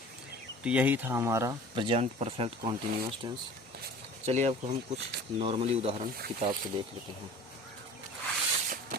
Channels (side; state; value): both; normal; correlation 0.43